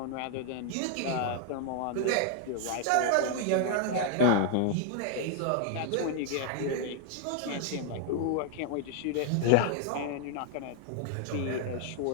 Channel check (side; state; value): both; different; correlation 0.00